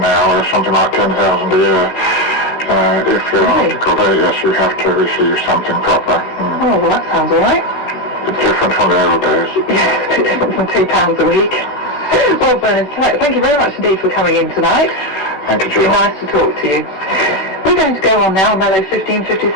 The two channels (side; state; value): right; late; 16 ms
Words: something like $10,000 a year. If you're an article there, yes, you have to receive something proper. Oh, well, that sounds all right. It's different from the old days. Yes, a bit different from £2 a week. Well, Vernon, thank you very much indeed for coming in tonight. Thank you, It's Jill. been nice to talk to you. We're going to go on now, Mellow